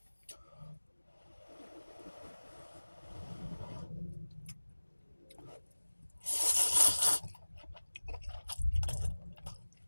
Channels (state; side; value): inverted; both; correlation -1.00